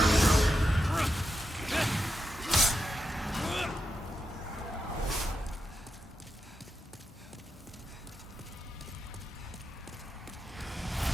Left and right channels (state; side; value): normal; both; correlation 0.86